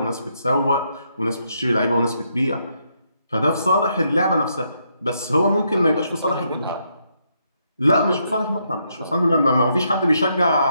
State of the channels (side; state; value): both; inverted; correlation -0.77